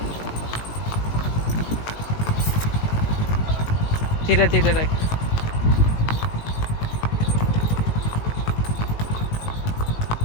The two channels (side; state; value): right; late; 18 ms